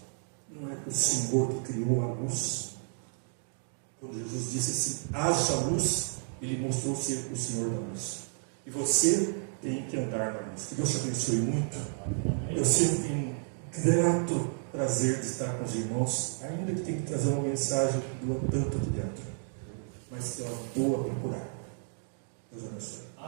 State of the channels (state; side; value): silent; left; 57 dB below the other